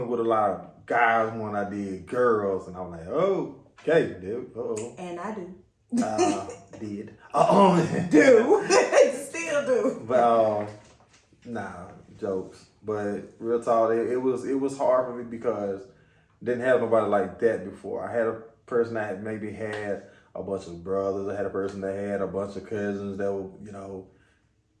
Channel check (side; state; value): both; identical; correlation 1.00